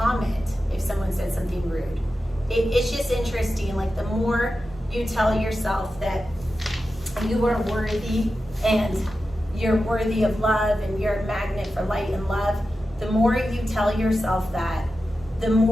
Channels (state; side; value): normal; both; correlation 0.92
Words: if someone said something rude. It's just interesting, like the more you tell yourself that you are worthy and you're worthy of love and you're a magnet for light and love, the more you tell yourself that, the